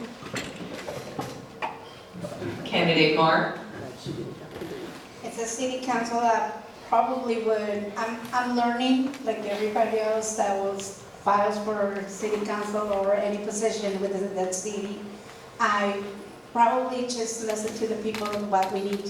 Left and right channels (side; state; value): both; identical; correlation 1.00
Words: Candidate Marr. It's a city council that probably would, I'm learning, like everybody else that was files for city council or any position within that city. I probably just listen to the people of what we need